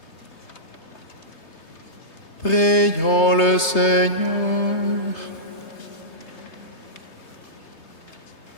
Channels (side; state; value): right; late; 3.3 ms